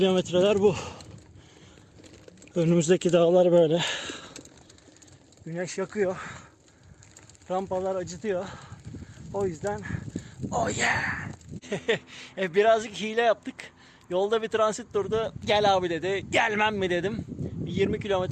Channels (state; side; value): identical; both; correlation 1.00